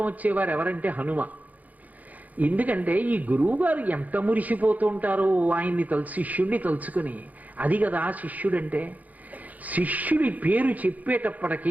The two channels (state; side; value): late; left; 0.078 ms